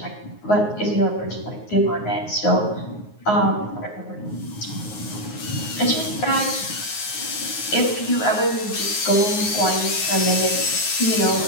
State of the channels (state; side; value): late; right; 9.5 ms